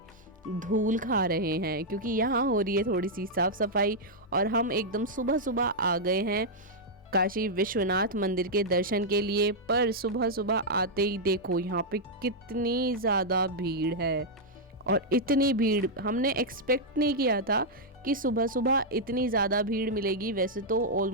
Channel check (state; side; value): normal; both; correlation -0.04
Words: धूल खा रहे हैं, क्योंकि यहाँ हो रही है थोड़ी सी साफ सफाई। और हम एकदम सुबह सुबह आ गए हैं काशी विश्वनाथ मंदिर के दर्शन के लिए। पर सुबह सुबह आते ही देखो यहाँ पे कितनी ज़्यादा भीड़ है, और इतनी भीड़ हमने एक्सपेक्ट नहीं किया था कि सुबह सुबह इतनी ज़्यादा भीड़ मिलेगी। वैसे तो